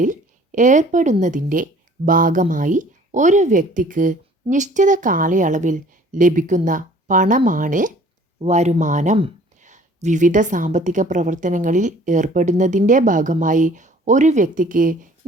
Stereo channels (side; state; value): both; normal; correlation 0.53